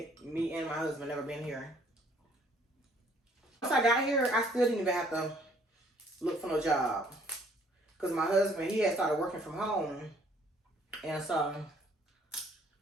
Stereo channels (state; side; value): normal; both; correlation 0.61